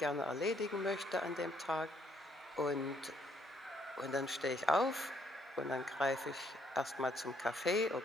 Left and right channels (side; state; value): both; normal; correlation 0.69